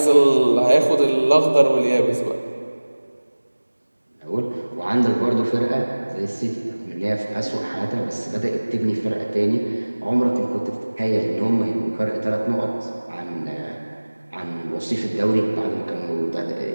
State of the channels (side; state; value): both; inverted; correlation -1.00